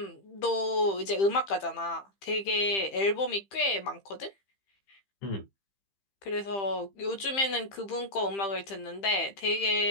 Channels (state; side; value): late; right; 15 ms